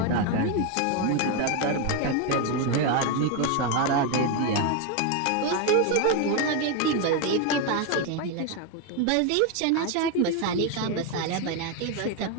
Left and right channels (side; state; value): both; different; correlation 0.02